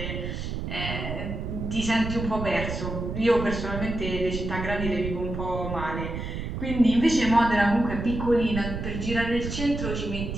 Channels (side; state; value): right; noise; rumble, 5 dB below the sound